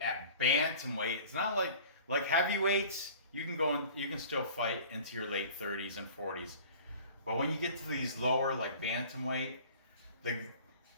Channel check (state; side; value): inverted; both; correlation -0.45